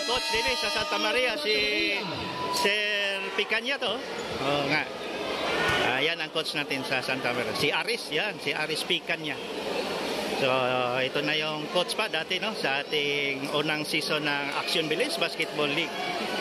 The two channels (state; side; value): identical; both; correlation 1.00